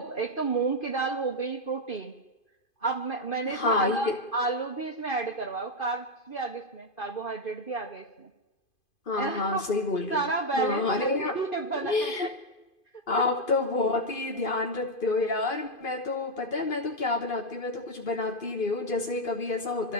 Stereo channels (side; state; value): right; late; 2.5 ms